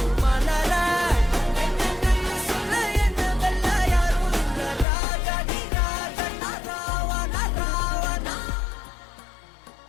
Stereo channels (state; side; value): drops out; right; at 4.9 s